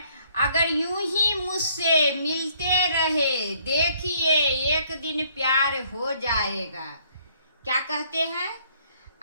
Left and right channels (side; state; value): both; inverted; correlation -0.65